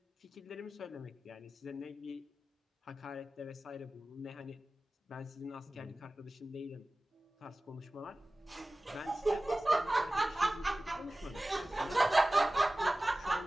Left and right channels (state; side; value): normal; both; correlation 0.97